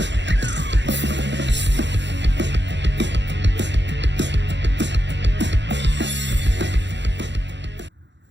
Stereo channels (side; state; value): left; late; 0.52 ms